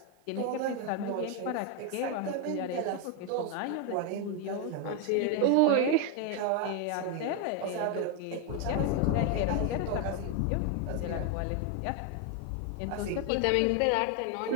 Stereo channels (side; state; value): both; different; correlation 0.01